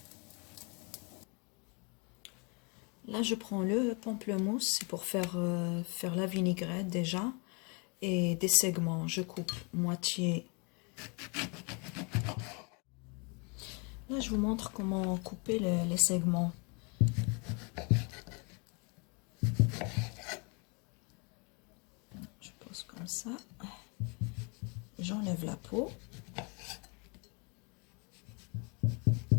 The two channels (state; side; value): quieter; right; 33.0 dB